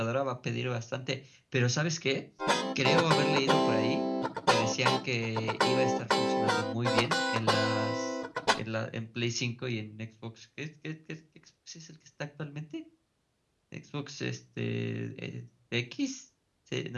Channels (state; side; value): identical; both; correlation 1.00